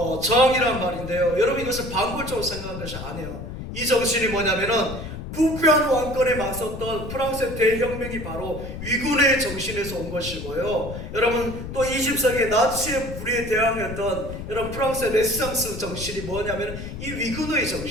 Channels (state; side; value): noise; left; rumble, 9 dB below the sound